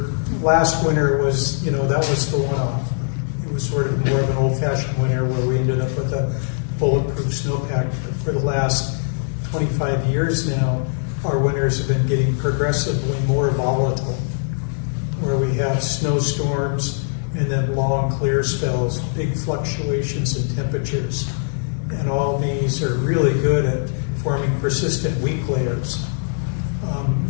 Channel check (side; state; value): right; silent; digital silence